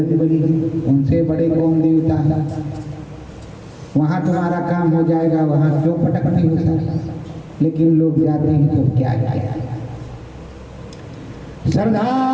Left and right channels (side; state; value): both; identical; correlation 1.00